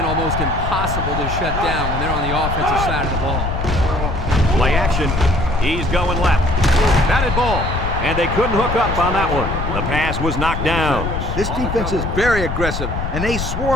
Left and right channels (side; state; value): left; noise; rumble, 4 dB below the sound